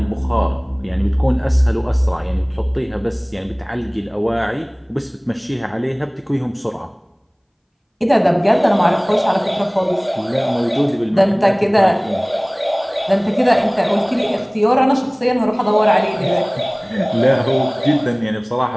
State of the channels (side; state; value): both; identical; correlation 1.00